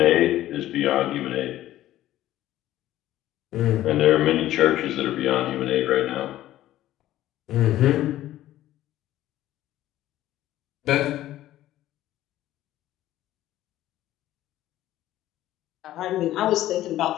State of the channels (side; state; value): right; quieter; 14.1 dB